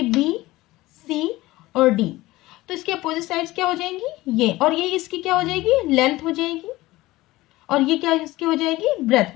बी, सी और डी, तो इसकी अपोजिट साइड्स क्या हो जाएंगी? ये, और ये इसकी क्या हो जाएगी? लेंथ हो जाएगी, और ये क्या इसकी हो जाएगी?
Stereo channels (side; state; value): right; quieter; 18.5 dB